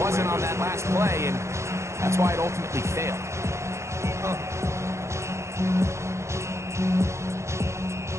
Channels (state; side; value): late; left; 0.14 ms